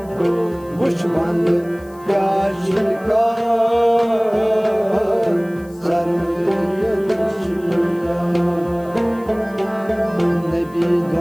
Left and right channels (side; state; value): left; noise; hiss, 27 dB below the sound